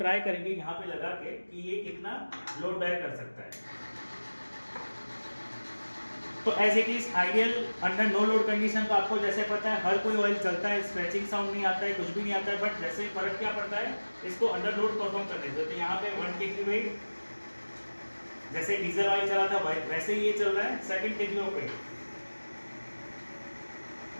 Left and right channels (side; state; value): both; inverted; correlation -1.00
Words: करेंगे यहाँ पे लगा के कि ये कितना लोड बैक कर सकता है। तो as it is ideal under no load condition, तो आपको जैसे पता है हर कोई ऑयल चलता है, स्क्रैचिंग साउंड नहीं आता है, कुछ भी नहीं आता है, बट जैसे फर्क क्या पड़ता है इसको अंडर लोड परफॉर्म करने से। तो यहाँ पे 1 kg वेट, जैसे डीजल ऑयल चला था वैसे ही ये चल रहा है, 2 kg of weight,